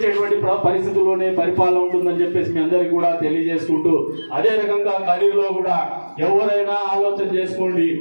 పరిస్థితుల్లోనే పరిపాలన ఉంటుందని చెప్పేసి మీ అందరికీ కూడా తెలియజేసుకుంటూ అదే రకంగా కదిరిలో కూడా ఎవరైనా ఆలోచన చేసుకోండి.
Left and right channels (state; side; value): inverted; both; correlation -1.00